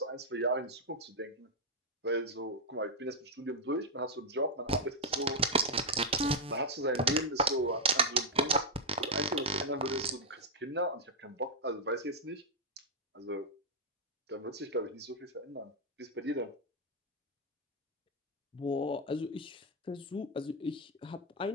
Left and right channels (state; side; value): normal; both; correlation -0.02